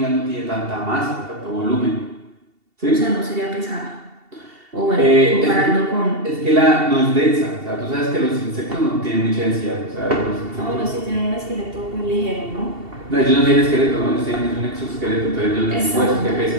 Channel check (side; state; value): left; late; 2.7 ms